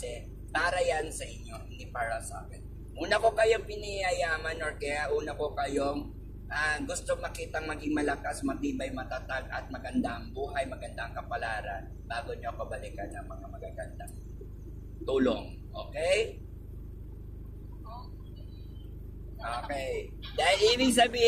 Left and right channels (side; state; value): both; identical; correlation 1.00